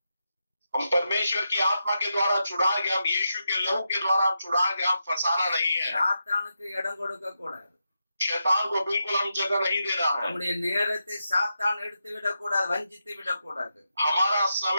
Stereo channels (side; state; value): both; inverted; correlation -0.86